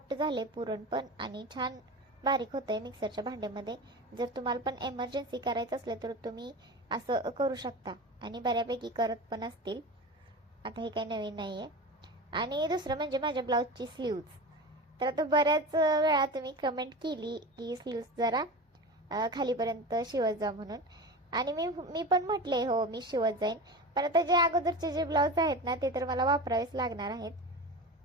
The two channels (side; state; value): both; normal; correlation 0.29